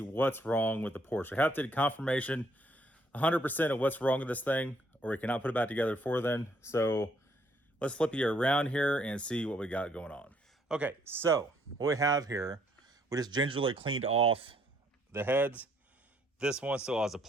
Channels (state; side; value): normal; both; correlation 0.68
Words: what's wrong with the Porsche. I have to get confirmation 100% of what's wrong with this thing, or we cannot put it back together before then. So let's flip you around here and see what we got going on. Okay, so what we have here, we just gingerly cleaned off the heads. This one still has the